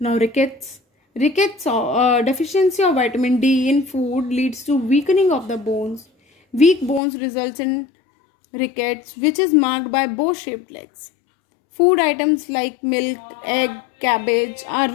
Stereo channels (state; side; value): drops out; right; at 7.0 s